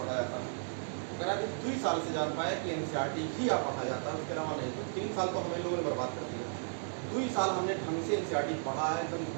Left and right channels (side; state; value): left; silent; digital silence